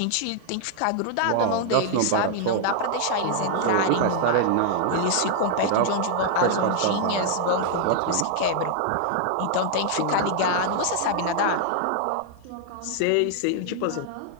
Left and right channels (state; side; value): different; both; correlation 0.00